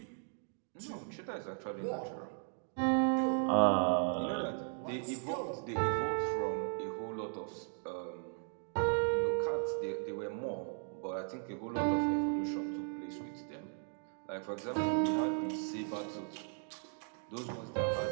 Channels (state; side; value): silent; left; 53 dB below the other